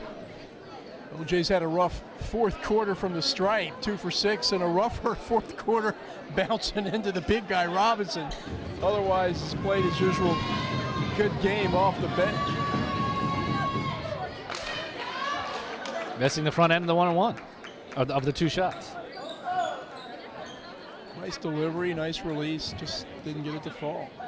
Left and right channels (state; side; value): identical; both; correlation 1.00